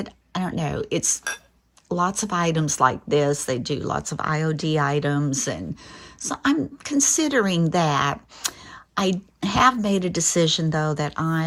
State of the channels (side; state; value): both; identical; correlation 1.00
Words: I don't know. It's lots of items like this. They do lots of IOD items. And so I'm considering that. I have made a decision, though, that